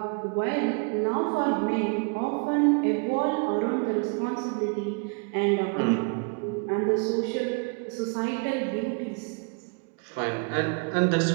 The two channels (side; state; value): left; quieter; 35.5 dB